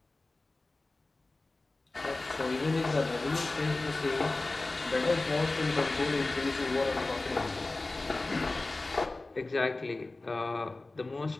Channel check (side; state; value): right; quieter; 3.1 dB